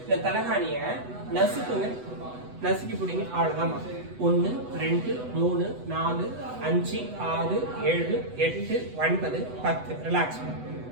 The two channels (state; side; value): late; left; 8.0 ms